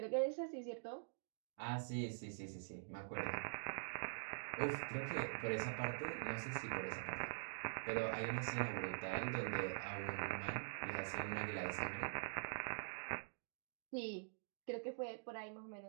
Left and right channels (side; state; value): left; silent; digital silence